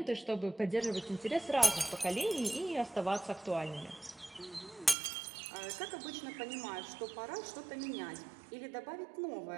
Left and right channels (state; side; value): drops out; left; at 5.0 s